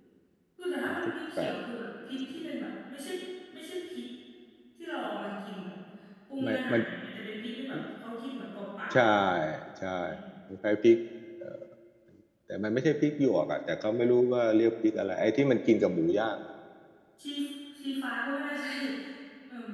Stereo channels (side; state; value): both; identical; correlation 1.00